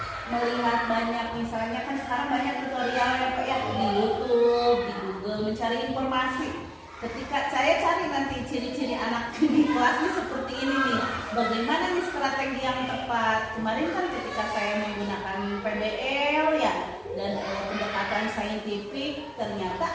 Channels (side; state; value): both; identical; correlation 1.00